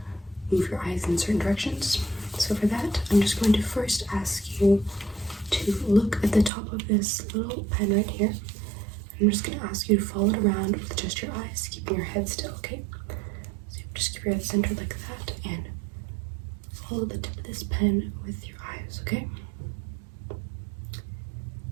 move your eyes in certain directions. So for that, I'm just going to first ask you to look at the top of this little pen right here. I'm just going to ask you to follow it around with just your eyes, keeping your head still, okay? So just keep your head centered like that and follow the tip of this pen with your eyes, okay?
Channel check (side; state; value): left; drops out; at 6.5 s